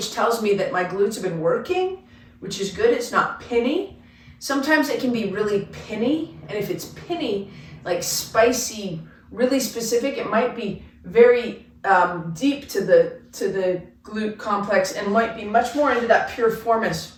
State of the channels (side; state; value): both; identical; correlation 1.00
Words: tells me that my glutes have been working, which is good. It's not pinny. Sometimes it can be really pinny, and if it's pinny, like spicy, really specific, it might be very deep to the glute complex and might be much more into that piriformis.